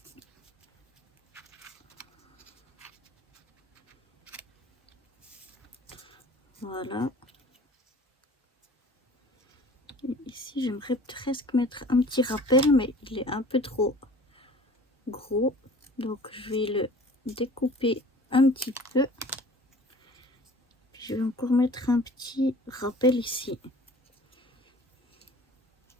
Voilà. Et ici, j'aimerais presque mettre un petit rappel, mais il est un peu trop gros. Donc, je vais le découper un petit peu. Je vais encore mettre un petit rappel ici.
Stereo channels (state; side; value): normal; both; correlation 0.46